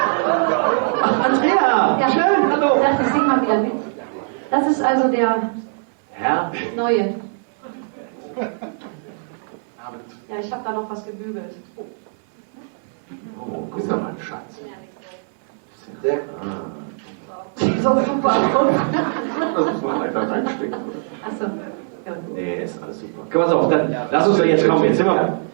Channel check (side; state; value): left; silent; 65 dB below the other